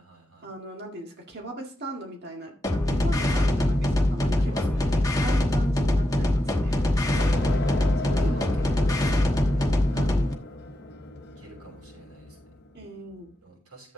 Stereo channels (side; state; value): both; normal; correlation 0.88